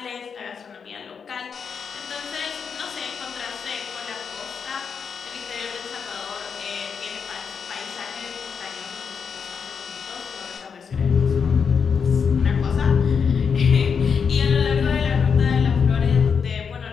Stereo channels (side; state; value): right; quieter; 6.3 dB